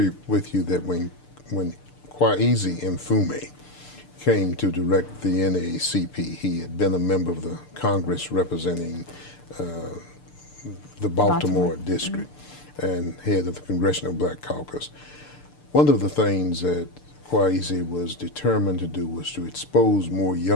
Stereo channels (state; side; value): late; right; 6.8 ms